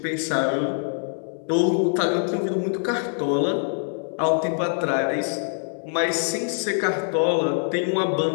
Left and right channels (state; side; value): silent; right; digital silence